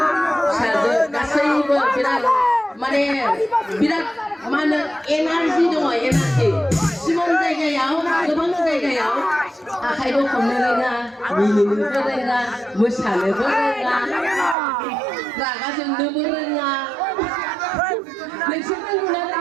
फिसाजो गासैबो बिराद माने बिराद मा होनो एनार्जि दङ एनार्जि सिमन जायगायाव गोबां जायगायाव आखाइबो हमनो रोङा मिनिनोबो रोङा मोसानोबो रोङा रागा जोंनोबो रोङा नोंसोर रोंगौना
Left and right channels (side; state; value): left; drops out; at 14.6 s